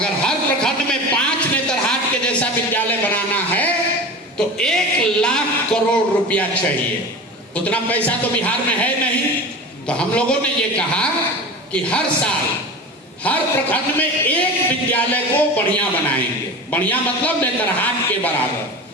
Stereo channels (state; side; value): normal; both; correlation 0.31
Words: हर प्रखंड में 5 नेतरहाट के जैसा विद्यालय बनाना है तो 1 लाख करोड़ रुपया चाहिए। उतना पैसा तो बिहार में है नहीं। तो हम लोगों ने ये कहा कि हर साल हर प्रखंड में एक विद्यालय को बढ़िया बनाएंगे। बढ़िया मतलब नेतरहाट के बराबर।